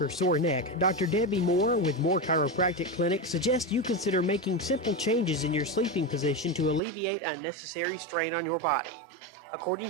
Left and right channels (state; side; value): drops out; left; at 6.8 s